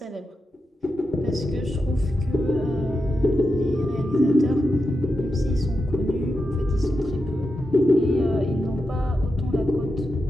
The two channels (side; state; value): both; normal; correlation 0.88